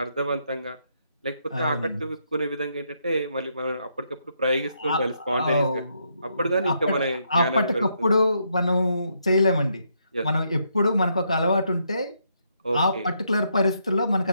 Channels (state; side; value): inverted; both; correlation -0.77